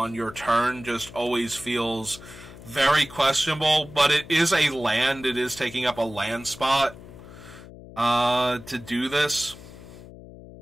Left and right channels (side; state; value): left; noise; hum, 17 dB below the sound